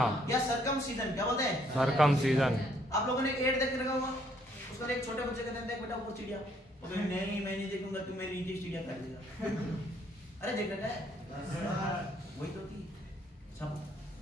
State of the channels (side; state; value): both; normal; correlation 0.67